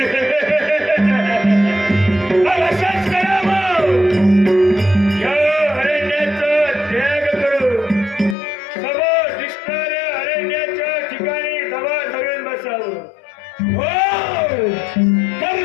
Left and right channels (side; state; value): right; drops out; at 8.3 s